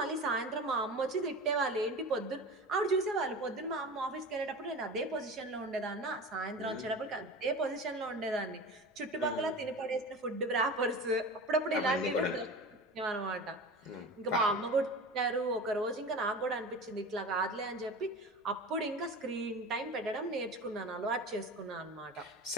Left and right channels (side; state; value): both; normal; correlation 0.32